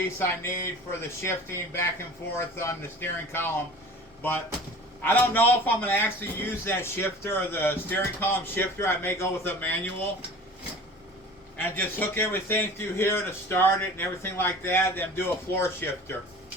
I need for the shifting back and forth on the steering column. But I don't know if I'm going to actually use that shifter, or the steering column shifter. I may go with a manual and just hook everything through here to start it and everything like that, then do a floor shifter.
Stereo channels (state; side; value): normal; both; correlation 0.42